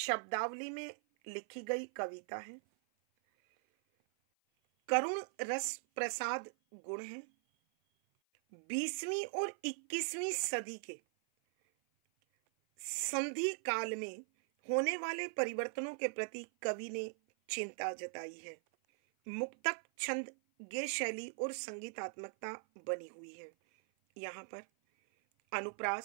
में लिखी गई कविता है, करुण रस प्रसाद गुण है। 20वीं और 21वीं सदी के संधि काल में होने वाले परिवर्तनों के प्रति कवि ने चिंता जताई है। मुक्तक, छंद, गेय शैली और संगीतात्मकता बनी हुई है। यहाँ पर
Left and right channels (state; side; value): silent; left; 51 dB below the other